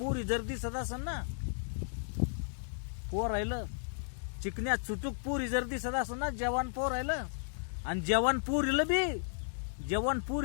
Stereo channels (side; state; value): right; silent; digital silence